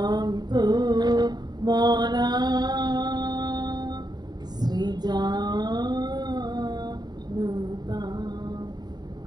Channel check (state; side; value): late; left; 0.20 ms